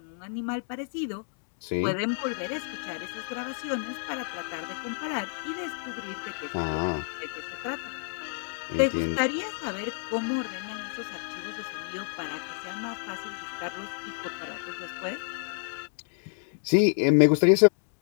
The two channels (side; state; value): right; silent; digital silence